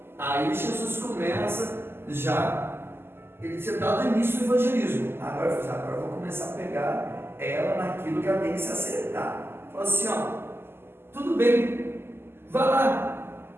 Aí Jesus começa já. Ele tinha dado início do evangelismo. Agora eu vou começar a pegar ela naquilo que ela tem que se acertar. Falou assim: ó, tudo bem, vá lá,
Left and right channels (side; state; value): left; late; 0.11 ms